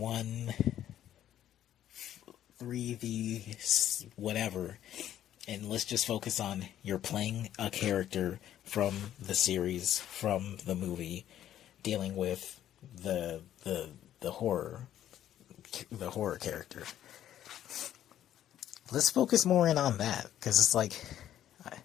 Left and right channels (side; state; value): right; quieter; 11.5 dB